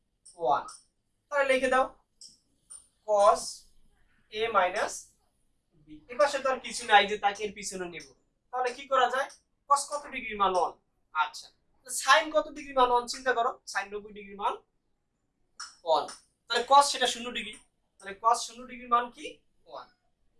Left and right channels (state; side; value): identical; both; correlation 1.00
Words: 1, তাহলে লিখে দাও cos a - b। এবার সেটা আর কিছু নাই যে তাকে এর পিছনে নেব, তাহলে কি করা যায়, cos কত ডিগ্রির মান 1, আচ্ছা sin কত ডিগ্রির মান 1 চিন্তা করো, sin 90 ডিগ্রির মান 1, তাহলে cos সেটা 0 ডিগ্রি, তাহলে cos 0 ডিগ্রির মান কি 1,